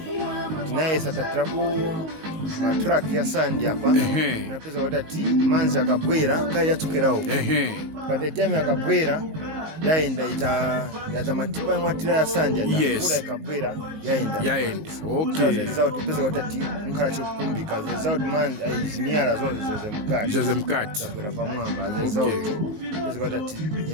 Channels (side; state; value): left; late; 19 ms